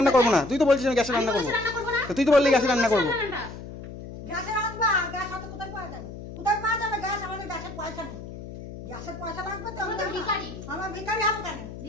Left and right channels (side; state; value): left; noise; hum, 12 dB below the sound